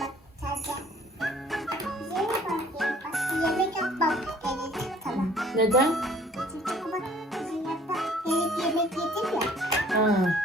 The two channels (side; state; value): both; normal; correlation 0.56